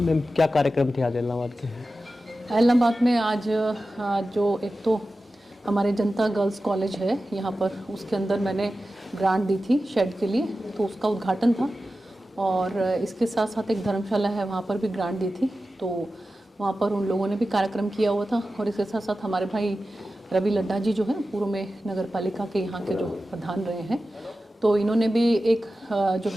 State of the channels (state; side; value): normal; both; correlation 0.94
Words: क्या कार्यक्रम थे आज इलाहाबाद के? इलाहाबाद में आज जो एक तो हमारे जनता गर्ल्स कॉलेज है यहाँ पर, उसके अंदर मैंने ग्रांट दी थी शेड के लिए, तो उसका उद्घाटन था। और इसके साथ साथ एक धर्मशाला है, वहाँ पर भी ग्रांट दी थी, तो वहाँ पर उन लोगों ने भी कार्यक्रम किया हुआ था। और इसके साथ साथ हमारे भाई रवि लड्ढा जी जो हैं पूर्व में नगर पालिका के यहाँ के जो प्रधान रहे हैं, तो इन्होंने भी एक जो